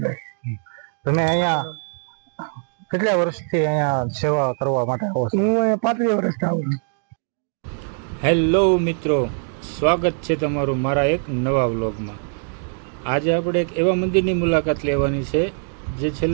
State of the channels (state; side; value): silent; left; 56 dB below the other